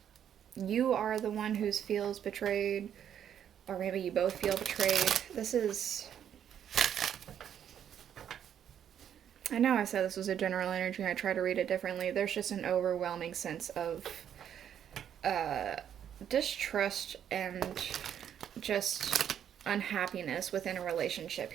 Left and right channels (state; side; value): quieter; left; 9.4 dB